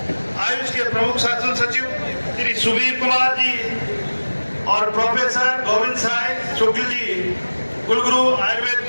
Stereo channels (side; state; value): both; inverted; correlation -1.00